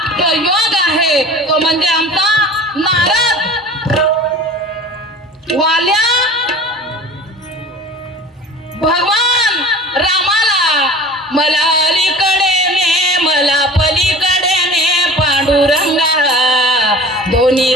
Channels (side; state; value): both; normal; correlation 0.41